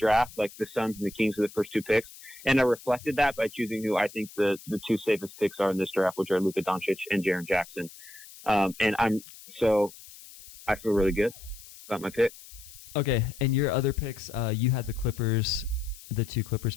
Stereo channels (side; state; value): left; noise; hiss, 18 dB below the sound